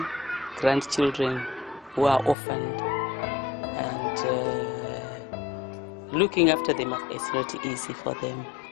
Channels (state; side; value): drops out; right; at 2.4 s